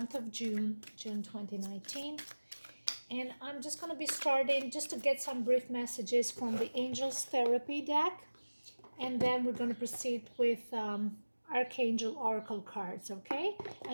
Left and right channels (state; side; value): inverted; both; correlation -1.00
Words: of June 2019. And I'm just going to be starting just to get some brief messages from the Angels Therapy deck, and then we're going to proceed with Archangel Oracle cards, okay?